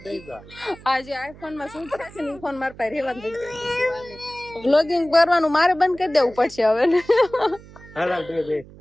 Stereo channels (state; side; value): noise; right; hum, 20 dB below the sound